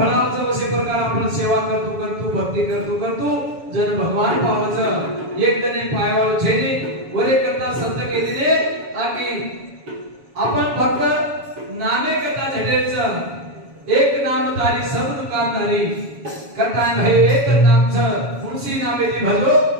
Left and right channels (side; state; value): left; late; 7.2 ms